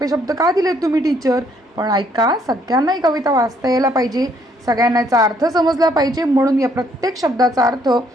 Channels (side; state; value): both; normal; correlation 0.67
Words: शब्द का दिलेत तुम्ही टीचर, पण ऐका, सगळ्यांना ही कविता वाचता यायला पाहिजे, सगळ्यांना याचा अर्थ समजला पाहिजे, म्हणून या प्रत्येक शब्दाचा अर्थ